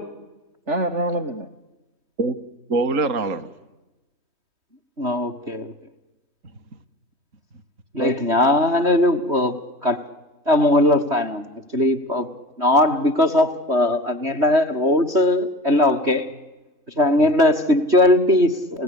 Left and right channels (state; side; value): late; left; 3.2 ms